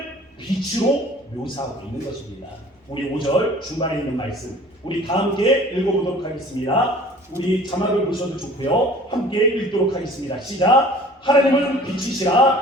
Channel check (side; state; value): both; normal; correlation 0.48